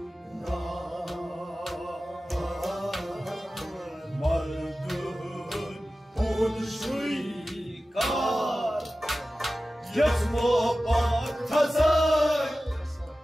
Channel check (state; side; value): normal; both; correlation 0.95